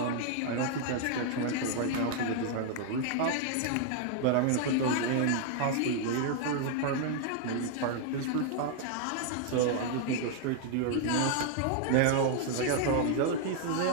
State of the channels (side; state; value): both; different; correlation 0.00